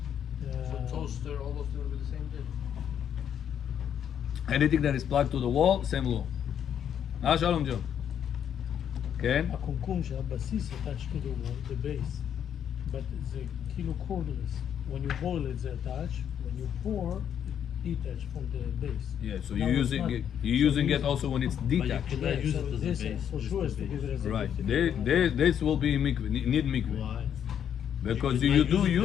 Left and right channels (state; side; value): quieter; right; 9.0 dB